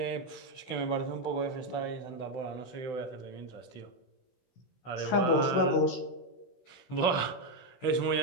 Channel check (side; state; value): right; late; 16 ms